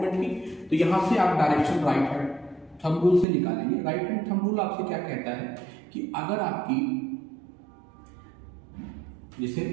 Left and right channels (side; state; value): left; drops out; at 3.2 s